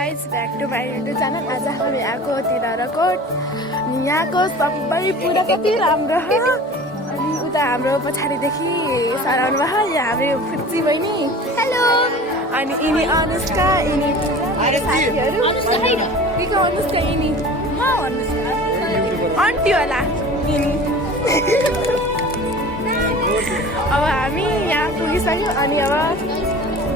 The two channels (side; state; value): both; normal; correlation 0.40